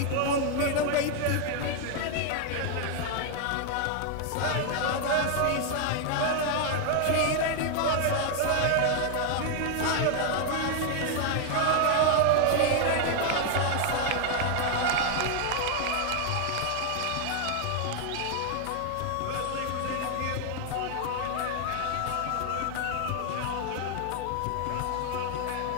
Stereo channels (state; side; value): different; both; correlation 0.00